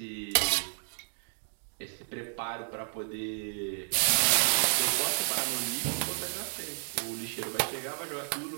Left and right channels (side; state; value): left; silent; digital silence